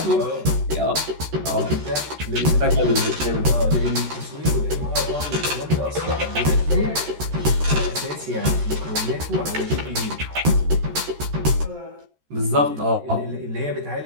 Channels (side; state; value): left; late; 13 ms